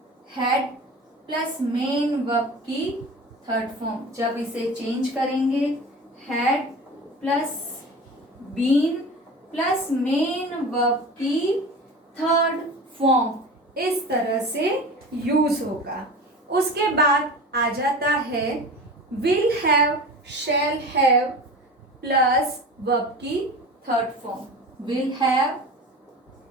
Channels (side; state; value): both; normal; correlation 0.34